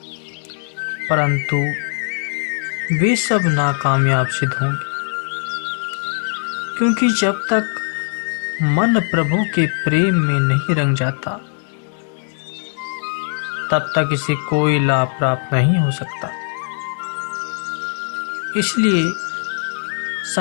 परंतु वे सब नाकामयाब सिद्ध होंगे, क्योंकि जब तक मन प्रभु के प्रेम में नहीं रंग जाता तब तक इसे कोई लाभ प्राप्त नहीं हो सकता। इसलिए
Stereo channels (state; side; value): silent; right; digital silence